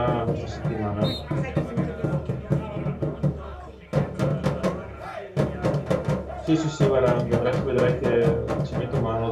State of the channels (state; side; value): identical; both; correlation 1.00